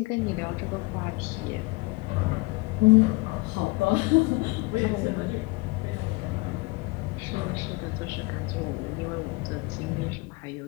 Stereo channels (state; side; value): quieter; right; 24.8 dB